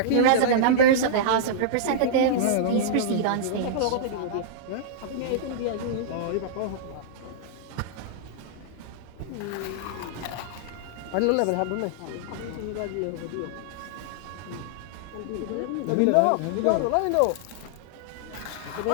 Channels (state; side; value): different; both; correlation -0.02